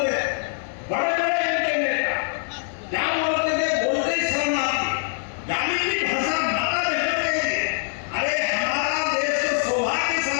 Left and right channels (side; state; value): right; silent; 63 dB below the other